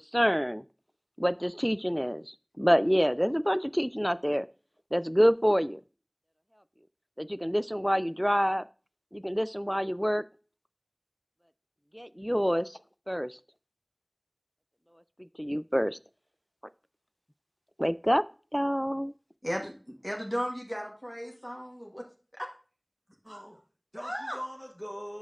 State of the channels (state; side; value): identical; both; correlation 1.00